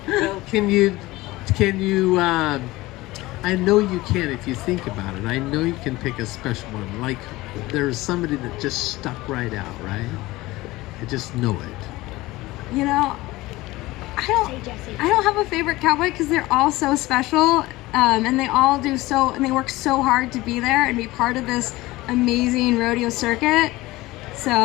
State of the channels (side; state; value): right; quieter; 19.3 dB